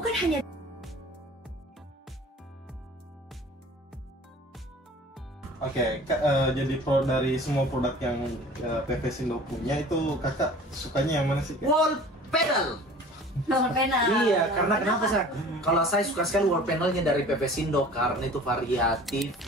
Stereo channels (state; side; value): normal; both; correlation 0.44